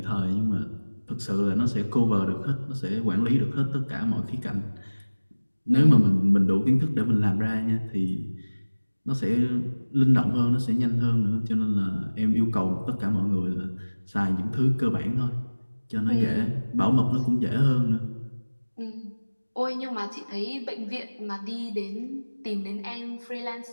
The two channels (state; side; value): inverted; both; correlation -1.00